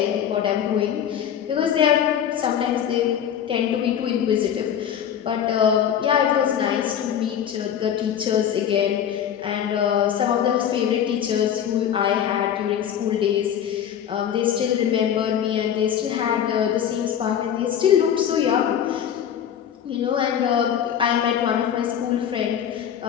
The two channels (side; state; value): right; quieter; 9.2 dB